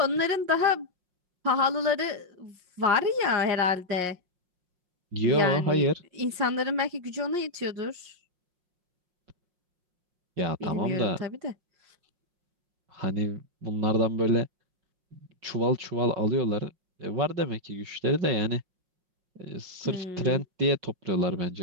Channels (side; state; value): left; late; 5.6 ms